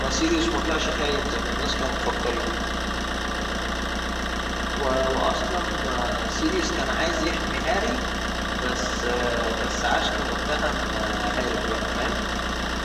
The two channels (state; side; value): identical; both; correlation 1.00